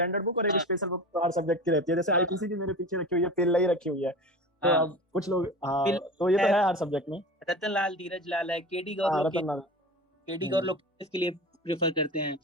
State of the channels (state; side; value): normal; both; correlation 0.33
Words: बुक और एक स्पेशल बुक तो हर सब्जेक्ट की रहती है। जैसे आईपीसी की मेरे पीछे रखी हुई है, पेल्ला ही रखी हुई है। तो अब कुछ लोग, हाँ, तो ये तो है हर सब्जेक्ट में। रतन लाल, धीरज लाल है, केडी गौर हाँ, लोग रतन लाल। केडी गौर लोग इसके लिए प्रेफर करते हैं।